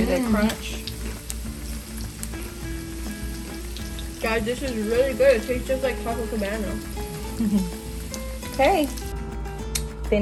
that crunch? Guys, this is really good. It tastes just like taco cabana. Okay.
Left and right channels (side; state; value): both; identical; correlation 1.00